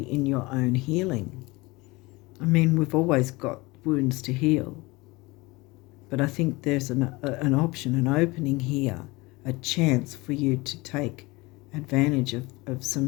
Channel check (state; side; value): quieter; right; 23.2 dB